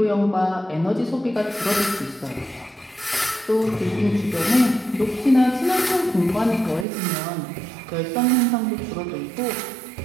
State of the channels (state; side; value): drops out; left; at 6.9 s